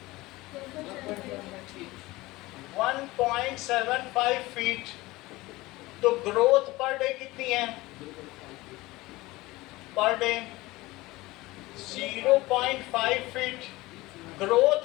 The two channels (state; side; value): quieter; right; 20.0 dB